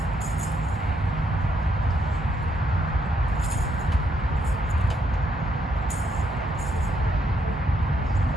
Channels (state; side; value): normal; both; correlation 0.75